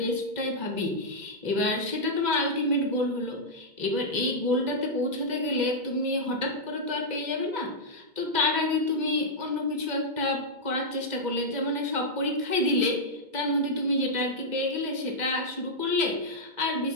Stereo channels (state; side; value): late; left; 2.0 ms